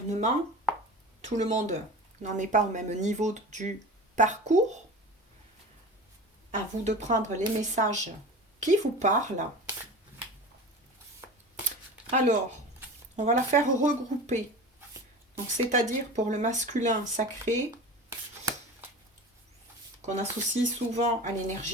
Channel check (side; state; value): both; normal; correlation 0.33